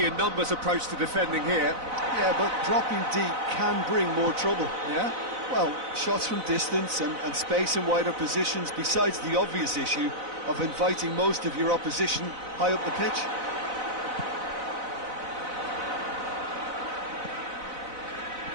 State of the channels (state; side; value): late; left; 4.0 ms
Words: in numbers approach to defending here. Yeah, but dropping deep can bring more trouble, yeah? Well, shots from distance and space in wider positions, besides the obvious issue of inviting most of your opposition high up the pitch.